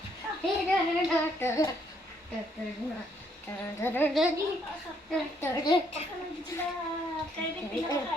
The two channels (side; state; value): both; normal; correlation 0.70